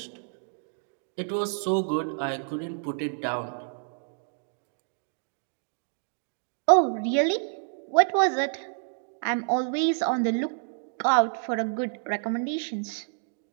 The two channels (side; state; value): left; silent; digital silence